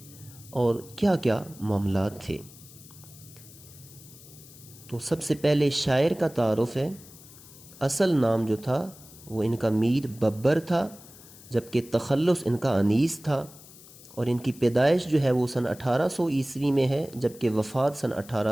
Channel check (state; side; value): noise; left; hiss, 20 dB below the sound